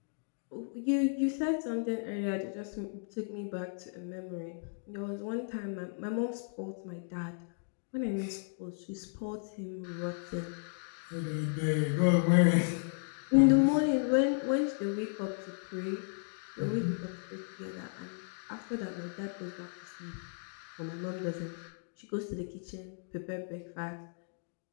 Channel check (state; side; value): silent; right; digital silence